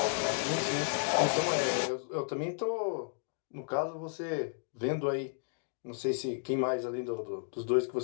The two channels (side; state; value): right; silent; digital silence